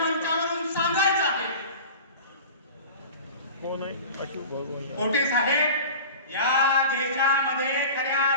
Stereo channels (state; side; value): inverted; both; correlation -0.37